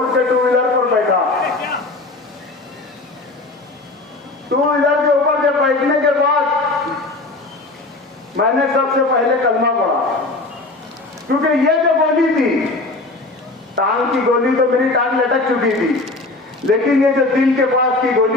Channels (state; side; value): quieter; right; 3.1 dB